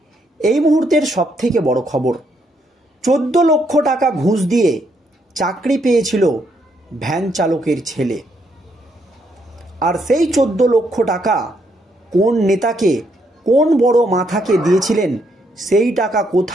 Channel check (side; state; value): both; normal; correlation 0.74